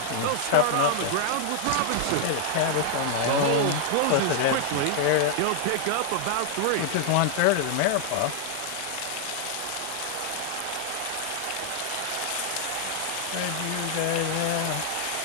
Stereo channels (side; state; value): both; different; correlation 0.00